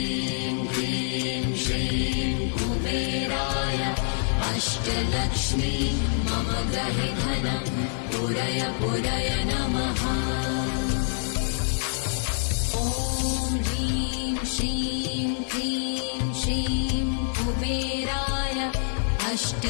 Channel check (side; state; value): right; silent; digital silence